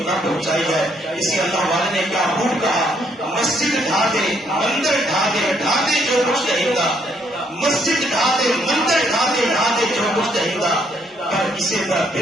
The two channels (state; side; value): normal; both; correlation 0.70